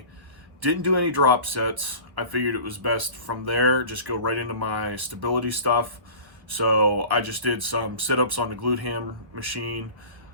didn't do any drop sets. I figured it was best from there, just go right into my stability stuff. So I just did some sit-ups on the glute ham machine.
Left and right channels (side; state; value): left; late; 1.3 ms